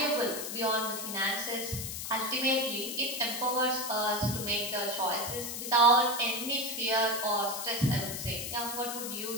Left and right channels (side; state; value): left; noise; hiss, 5 dB below the sound